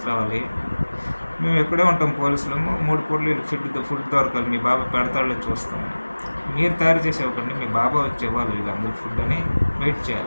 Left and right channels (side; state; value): both; inverted; correlation -1.00